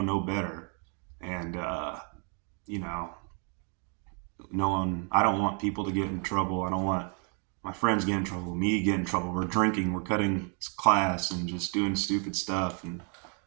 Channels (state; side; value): quieter; left; 38.9 dB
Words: know better. And, you know, I don't want people to get in trouble. I don't want my friends get in trouble, me get in trouble. We're drinking, we're cutting class and just doing stupid stuff. And